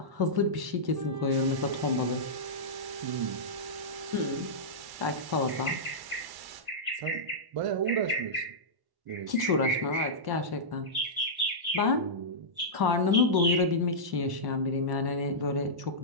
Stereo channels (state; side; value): late; left; 1.1 ms